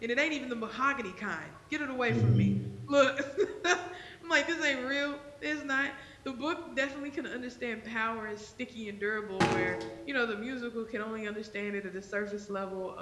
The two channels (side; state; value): both; identical; correlation 1.00